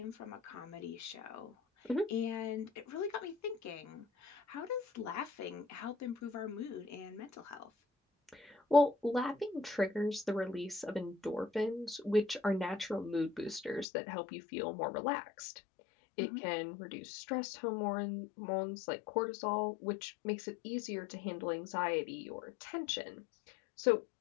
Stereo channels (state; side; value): drops out; right; at 13.9 s